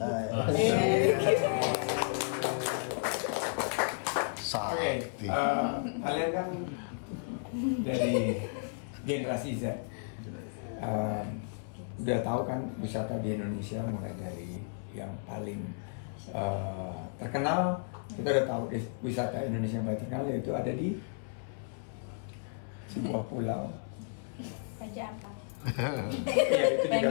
gitu. Oke, kalian kan dari generasi Z, udah tahu kan wisata di Indonesia mulai dari yang paling terkenal. Kita udah tahu wisata Indonesia yang paling terkenal yaitu ada di sebuah pulau. Raja Ampat. Ya, itu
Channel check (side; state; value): right; silent; 56 dB below the other